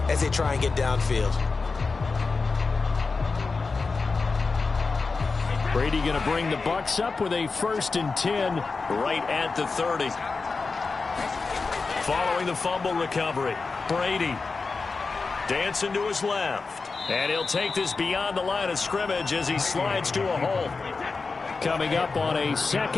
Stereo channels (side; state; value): right; quieter; 4.3 dB